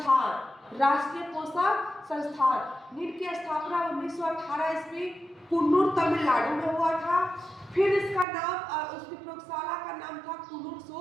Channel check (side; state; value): left; drops out; at 8.2 s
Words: राष्ट्रीय पोषक संस्थान। नील की स्थापना 1918 ईस्वी कुन्नूर तमिलनाडु में हुआ था। फिर इसका नाम, उसकी प्रयोगशाला का नाम था कुन्नूर